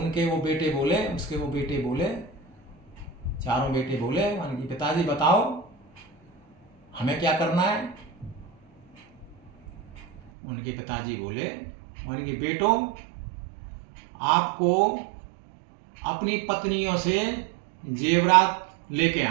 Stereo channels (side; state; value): left; drops out; at 10.3 s